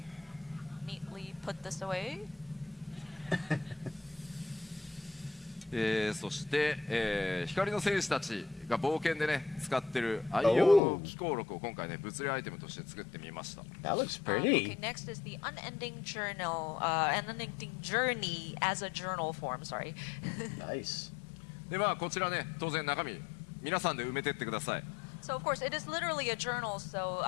neatly put this away. そして、光の戦士たちが冒険でね使ってる愛用の機構録を今回ね物理アイテムとして作ってみました。 That looks Okay, pretty. next is the unending journey as a journal form. Sorry. Nice. でまあこちらね当然中身皆さんで埋めてってください。 So of course, it is literally a journal, so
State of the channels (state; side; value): drops out; right; at 10.8 s